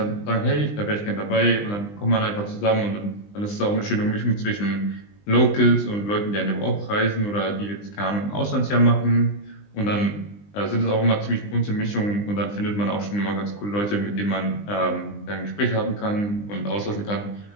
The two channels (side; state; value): right; late; 20 ms